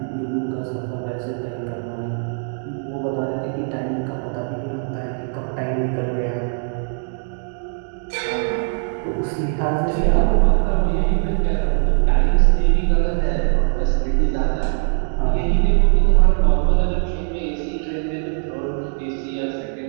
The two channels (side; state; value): left; silent; digital silence